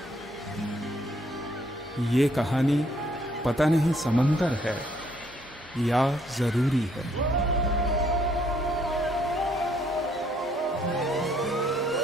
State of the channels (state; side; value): normal; both; correlation 0.67